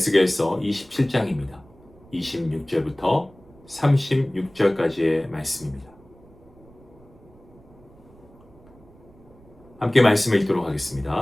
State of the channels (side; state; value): right; noise; rumble, 26 dB below the sound